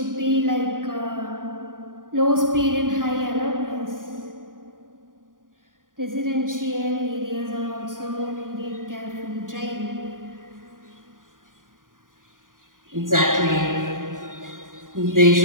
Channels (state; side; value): late; left; 0.89 ms